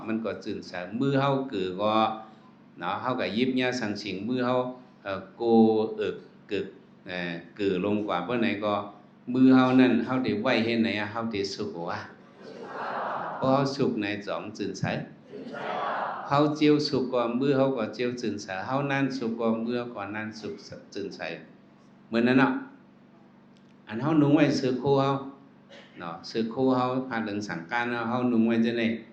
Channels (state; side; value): identical; both; correlation 1.00